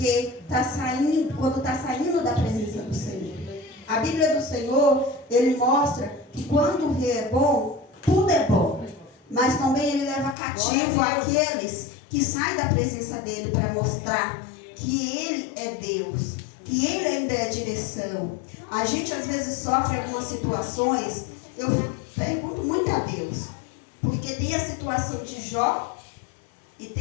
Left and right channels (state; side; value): drops out; right; at 10.4 s